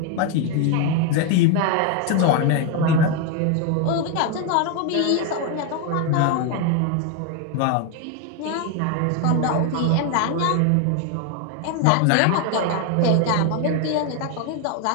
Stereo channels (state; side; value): different; both; correlation 0.01